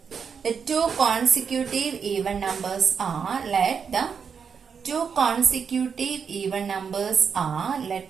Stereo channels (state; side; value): quieter; left; 6.4 dB